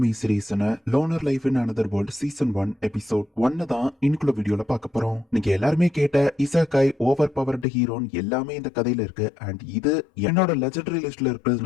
சீரிஸான loner life in another world season 1 episode 1 தான் இன்னைக்குள்ள வீடியோல பார்க்க போறோம். நீங்க எல்லாருமே கேட்ட இசாகாய் ஓவர் பவர்டு ஹீரோன்னு எல்லாமே இந்த கதையில இருக்கு. அண்ட் இது என்னோட லெஜெண்டரி லிஸ்ட்ல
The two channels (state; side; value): drops out; right; at 7.7 s